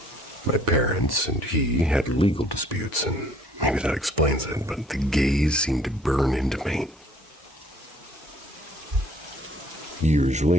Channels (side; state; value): both; normal; correlation 0.59